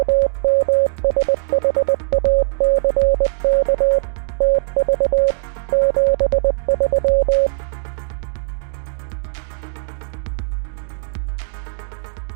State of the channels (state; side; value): silent; left; 56 dB below the other